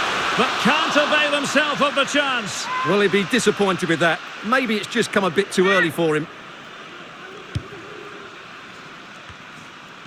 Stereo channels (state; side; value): identical; both; correlation 1.00